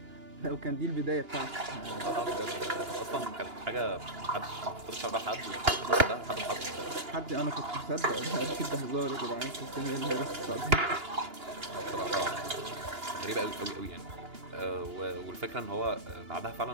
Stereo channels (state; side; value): late; left; 2.9 ms